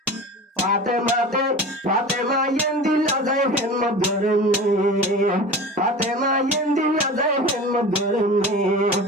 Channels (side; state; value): both; normal; correlation 0.34